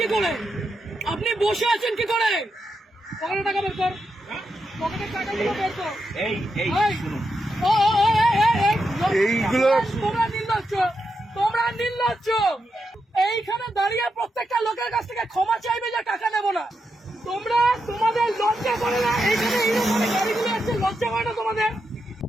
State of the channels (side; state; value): both; normal; correlation 0.85